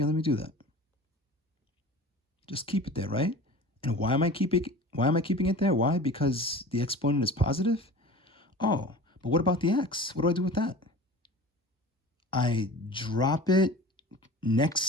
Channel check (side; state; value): both; normal; correlation 0.38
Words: let me do that. Just keep it there, right? And why am I keeping it there? Why? Because the exponent is positive? Oh, but what about the x? What do I do with that? I drop it